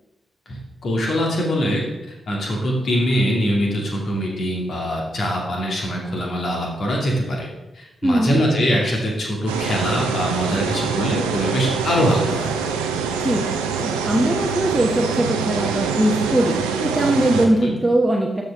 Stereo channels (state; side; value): normal; both; correlation 0.78